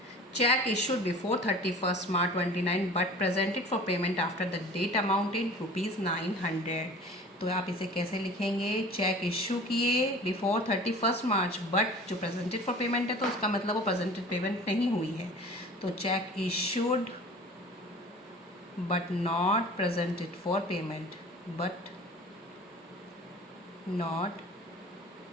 cheque issued before 31 March 29 but presented for payment after the date amount in ₹900। तो आप इसे कैसे लिखेंगे? चेक इशू किए बिफोर 31 मार्च बट जो प्रेजेंटेड फॉर पेमेंट है तो उसका मतलब वो प्रेजेंटेड पेमेंट नहीं हुई है। तो cheque issued but not presented for payment, but not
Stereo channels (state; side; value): normal; both; correlation 0.43